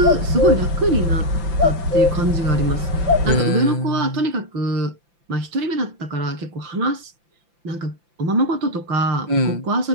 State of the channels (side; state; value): left; late; 5.9 ms